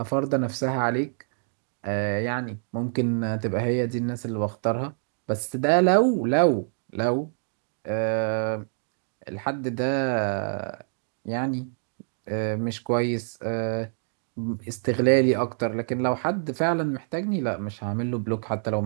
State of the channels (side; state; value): left; silent; digital silence